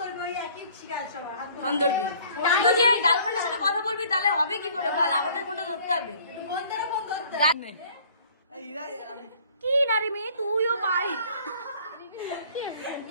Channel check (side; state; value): both; inverted; correlation -0.55